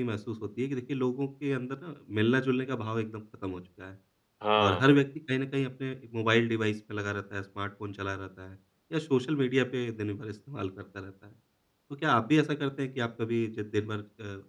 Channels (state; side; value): identical; both; correlation 1.00